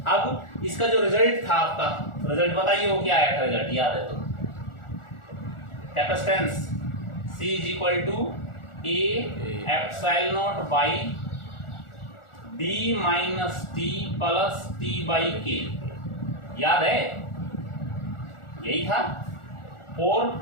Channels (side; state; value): right; late; 1.4 ms